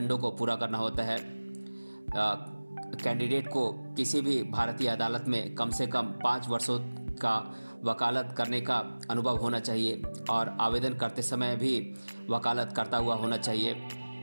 को पूरा करना होता है। कैंडिडेट को किसी भी भारतीय अदालत में कम से कम 5 वर्षों का वकालत करने का अनुभव होना चाहिए और आवेदन करते समय भी वकालत करता हुआ होना चाहिए।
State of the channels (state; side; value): inverted; both; correlation -1.00